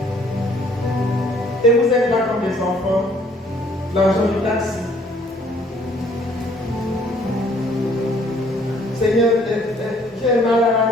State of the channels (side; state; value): both; normal; correlation 0.61